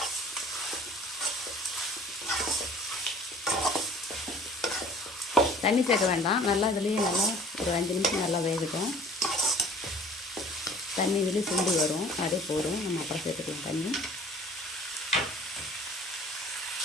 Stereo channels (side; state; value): both; normal; correlation 0.50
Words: தண்ணி சேர்க்க வேண்டாம். நல்லா இதுலேயே நல்லா ஒரு 5 நிமிஷம் நல்லா வேகட்டும். தண்ணி இதுலேயே சுண்டி வரும், அதே போதும். நம்ம அப்புறம் சேர்த்துக்கலாம் தண்ணி.